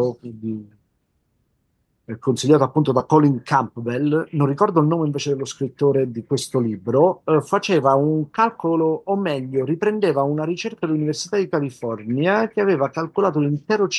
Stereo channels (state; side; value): identical; both; correlation 1.00